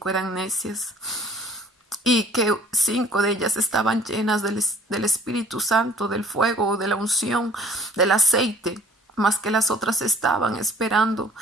eran necias, y que 5 de ellas estaban llenas del Espíritu Santo, del fuego, de la unción, del aceite, más que las otras estaban esperando,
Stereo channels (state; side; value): normal; both; correlation 0.53